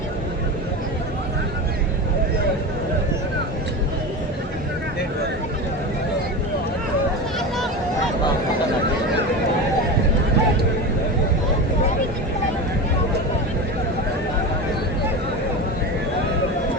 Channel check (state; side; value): normal; both; correlation 0.25